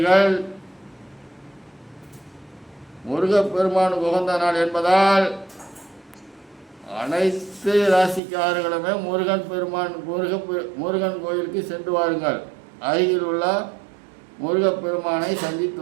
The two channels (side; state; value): left; drops out; at 8.2 s